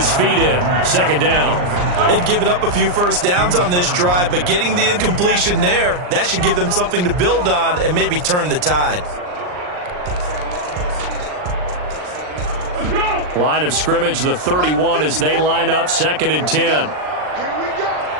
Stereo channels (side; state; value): left; late; 39 ms